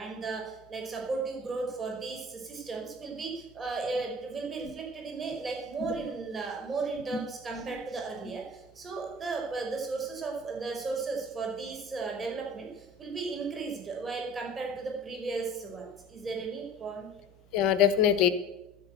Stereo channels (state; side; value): noise; right; hum, 25 dB below the sound